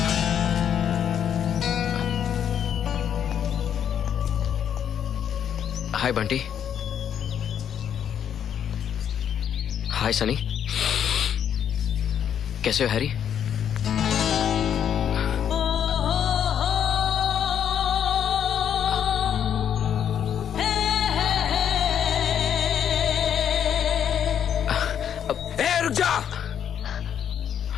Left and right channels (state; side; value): quieter; right; 9.0 dB